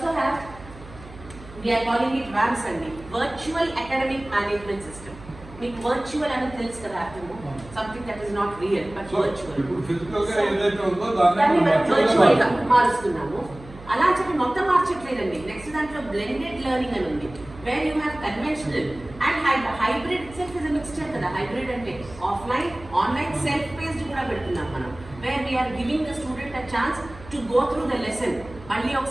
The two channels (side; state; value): right; noise; hum, 18 dB below the sound